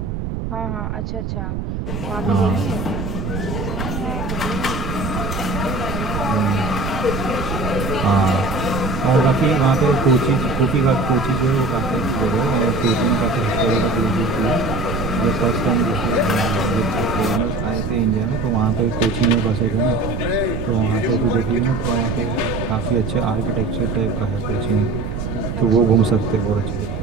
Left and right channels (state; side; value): noise; right; rumble, 4 dB below the sound